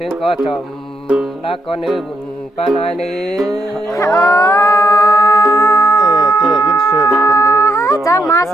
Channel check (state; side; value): normal; both; correlation 0.78